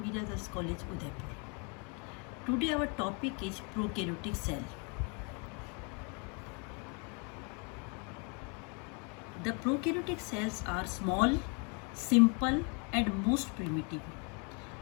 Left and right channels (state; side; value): quieter; right; 34.6 dB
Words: Mira Girls College, Udaipur. Today our topic is prokaryotic cell. The prokaryotic cells are small, simple and most primitive.